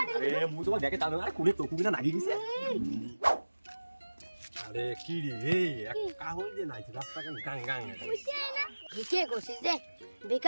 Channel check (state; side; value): inverted; both; correlation -1.00